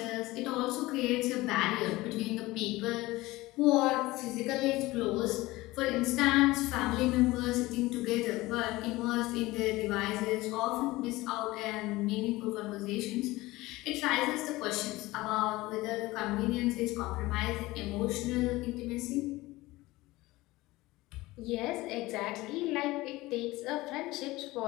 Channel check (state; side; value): quieter; right; 19.5 dB